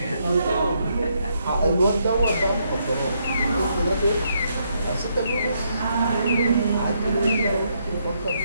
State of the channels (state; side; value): inverted; both; correlation -0.75